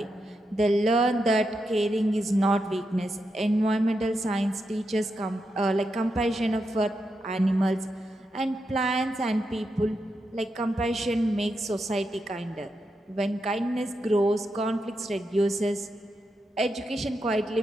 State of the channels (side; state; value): both; normal; correlation 0.85